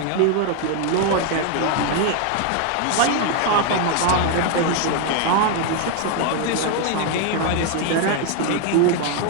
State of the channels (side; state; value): both; different; correlation 0.00